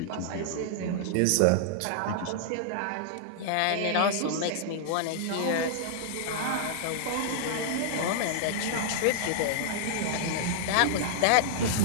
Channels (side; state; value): both; different; correlation -0.01